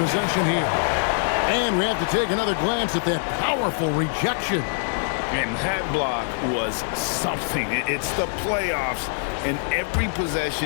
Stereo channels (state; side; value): silent; right; digital silence